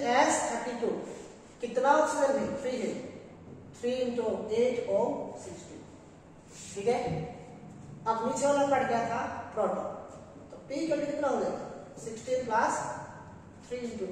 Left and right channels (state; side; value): identical; both; correlation 1.00